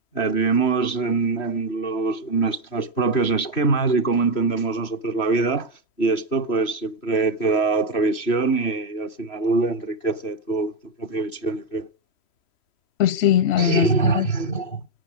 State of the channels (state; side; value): late; right; 3.1 ms